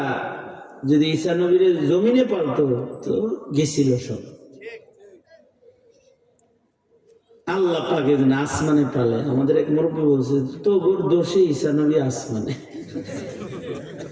যদি ঈসা নবীর জমিনে পালতো তো গেছিল সব। আল্লাহ পাকে যেন আসমানে পালে। আমাদের এক মুরব্বী বলছে, তো গোর দোষে ঈসা নবী আসমানে।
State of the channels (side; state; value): both; identical; correlation 1.00